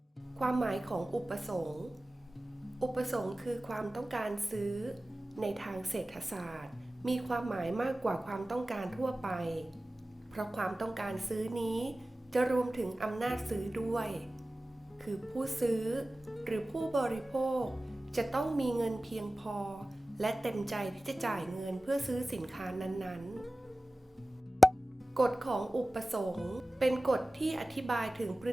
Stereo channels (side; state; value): both; normal; correlation 0.97